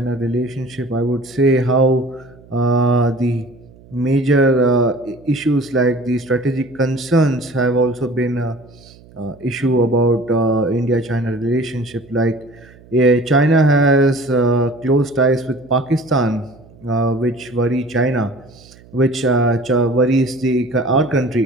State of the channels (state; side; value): noise; right; hum, 24 dB below the sound